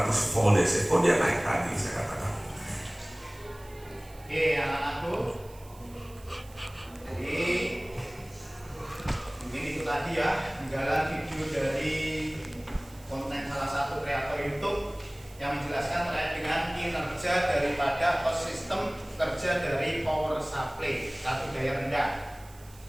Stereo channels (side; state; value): right; noise; hiss, 24 dB below the sound